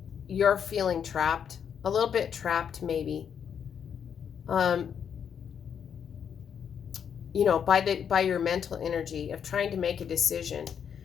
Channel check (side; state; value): right; quieter; 7.8 dB